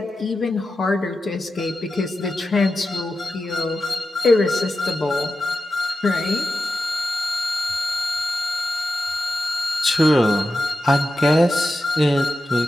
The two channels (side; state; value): both; normal; correlation 0.91